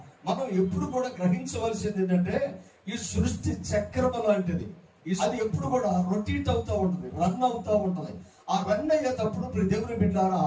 మనం ఎప్పుడు కూడా గ్రహించవలసింది ఏంటంటే ఈ సృష్టి చక్రం లాంటిది. అది ఎప్పుడు కూడా రొటేట్ అవుతూ ఉంటుంది, రన్ అవుతూ ఉంటుంది. ఆ రన్ అయ్యేటప్పుడు దేవుని బిడ్డలారా,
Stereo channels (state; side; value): identical; both; correlation 1.00